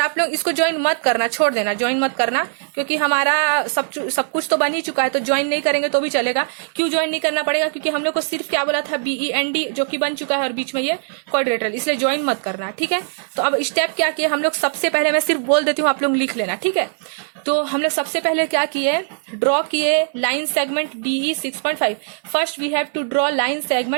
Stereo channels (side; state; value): left; silent; 61 dB below the other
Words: लोग इसको ज्वाइन मत करना, छोड़ देना, ज्वाइन मत करना, क्योंकि हमारा सब कुछ तो बन ही चुका है, तो ज्वाइन नहीं करेंगे तो भी चलेगा। क्यों ज्वाइन नहीं करना पड़ेगा, क्योंकि हम लोग को सिर्फ क्या बोला था, BEND, जो कि बन चुका है और बीच में ये क्वाड्रिलेटरल, इसलिए ज्वाइन मत करना, ठीक है। तो अब स्टेप क्या किए हम लोग, सबसे पहले मैं सिर्फ बोल देती हूँ, आप लोग लिख लेना, ठीक है। तो हम लोग सबसे पहले क्या किए, ड्रॉ किए line segment DE 6.5। First we have to draw line